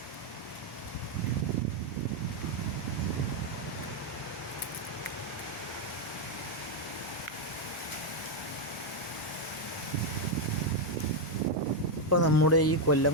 ഇപ്പോൾ നമ്മുടെ ഈ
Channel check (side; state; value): both; normal; correlation 0.02